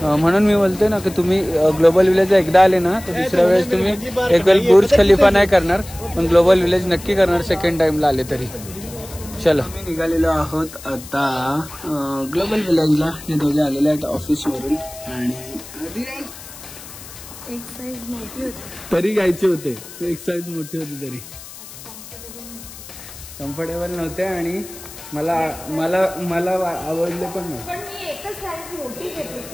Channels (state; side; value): noise; left; hiss, 16 dB below the sound